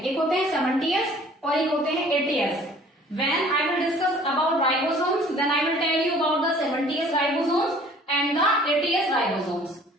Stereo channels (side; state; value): both; normal; correlation 0.52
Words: एक होते हैं 70S और एक होते हैं 80S. When I will discuss about ribosomes, then I will tell you about the 70S ribosomes and the 80S ribosomes.